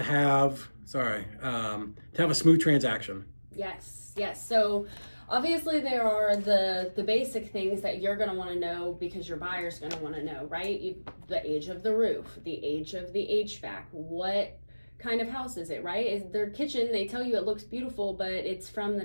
have, to have a smooth transaction? Yes. So obviously there are the basic things that you're going to want to know because your buyer's going to want to know, right? The age of the roof, the age of the HVAC, what kind of house is it, right? Is their kitchen, they tell you it looks beautiful, but it's from the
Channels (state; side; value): inverted; both; correlation -1.00